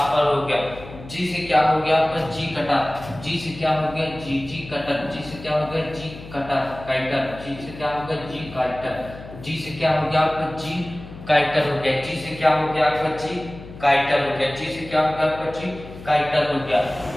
हो गया। जी से क्या हो गया आपका, जी कटर, जी से क्या हो गया, जी कटर, जी से क्या हो गया, जी कटर काइटर, जी से क्या हो गया, जी काइटर, जी से क्या हो गया आपका, जी काइटर हो गया। जी से क्या हो गया आपका, जी काइटर हो गया, जी से क्या हो गया आपका, जी काइटर हो गया।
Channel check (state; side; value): noise; left; hum, 15 dB below the sound